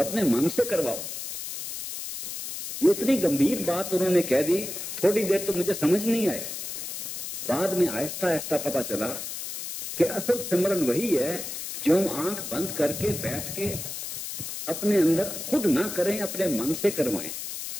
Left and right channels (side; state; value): left; noise; hiss, 7 dB below the sound